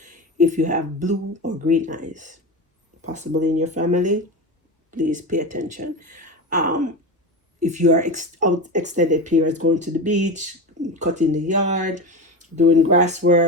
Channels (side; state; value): both; normal; correlation 0.23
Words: If you have blue or green eyes, possibly in your family, please pay attention. If you are out extended periods, going to the beach, cutting the yard, doing grass